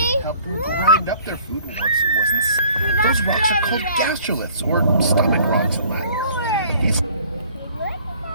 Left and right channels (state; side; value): inverted; both; correlation -0.55